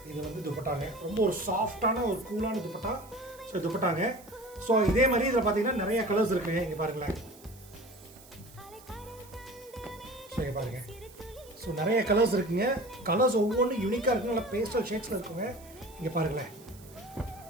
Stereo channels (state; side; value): noise; right; hiss, 22 dB below the sound